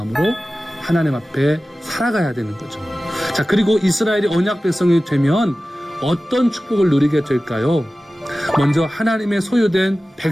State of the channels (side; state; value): both; normal; correlation 0.96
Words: 하나님 앞에 살아가야 되는 거죠. 자, 그리고 이스라엘이 언약 백성이 되면 어떤 축복을 누리게 될까요? 먼저 하나님의 소유된